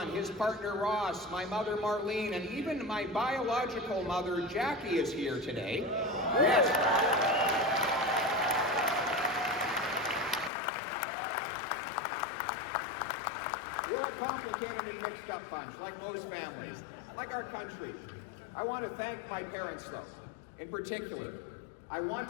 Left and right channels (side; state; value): right; drops out; at 10.5 s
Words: his partner Ross, my mother Marlene, and even my biological mother Jackie is here today. Yes. We're a complicated and mixed up bunch, like most families, like our country. I want to thank my parents, though. In particular, I want